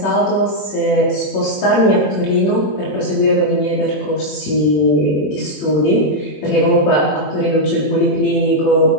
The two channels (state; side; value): late; right; 21 ms